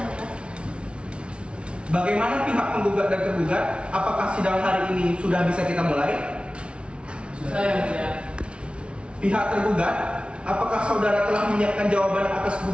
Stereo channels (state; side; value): late; left; 0.058 ms